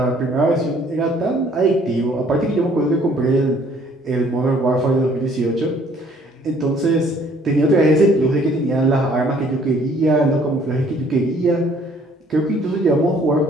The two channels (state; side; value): normal; both; correlation 0.59